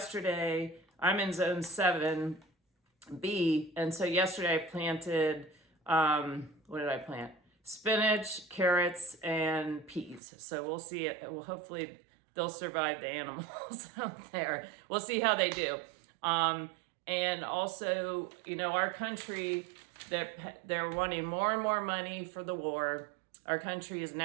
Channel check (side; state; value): left; drops out; at 10.2 s